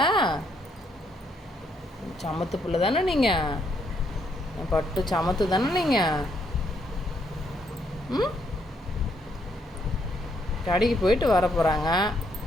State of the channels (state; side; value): normal; both; correlation 0.73